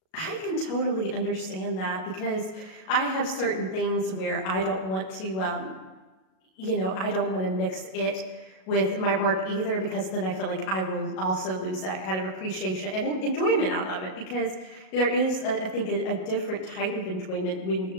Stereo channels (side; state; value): right; late; 37 ms